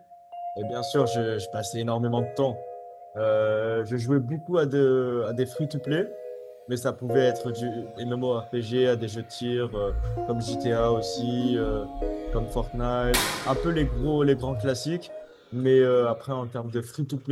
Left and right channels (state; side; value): identical; both; correlation 1.00